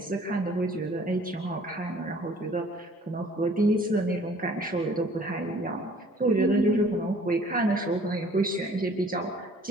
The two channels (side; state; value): both; normal; correlation 0.54